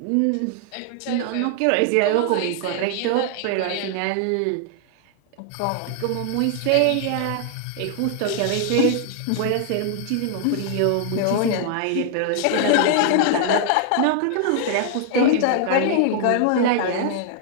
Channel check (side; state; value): both; different; correlation 0.00